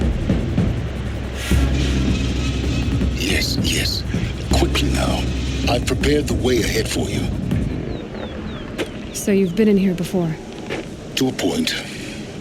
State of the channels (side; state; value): both; identical; correlation 1.00